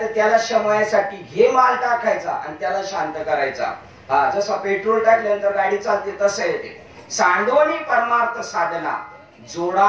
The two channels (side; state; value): both; identical; correlation 1.00